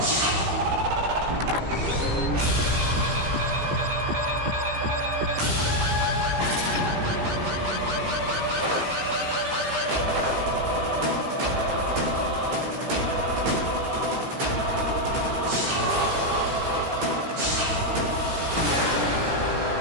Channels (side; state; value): left; late; 17 ms